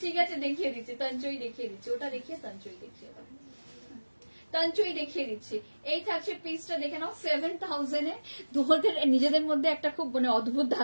আছে দেখিয়ে দিচ্ছি, তাঞ্চই দেখিয়ে দিচ্ছি, ওটা দেখিয়ে তাঞ্চই দেখিয়ে দাও, তাঞ্চই দেখিয়ে দিচ্ছি। এই থাকছে পিসটা, দেখে নাও 7000 এ। তোমাদের নিজেদের মধ্যে একটা খুব মানে অদ্ভুত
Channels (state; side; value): inverted; both; correlation -1.00